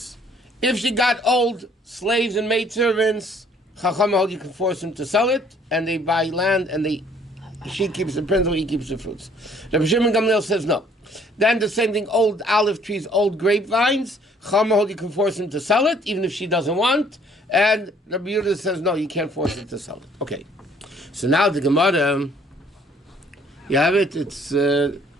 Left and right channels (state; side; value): normal; both; correlation 0.60